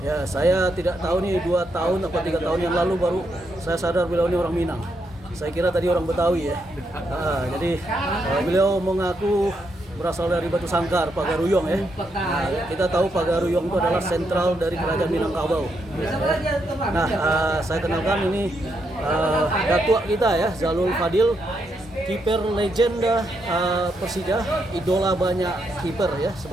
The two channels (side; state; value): both; normal; correlation 0.79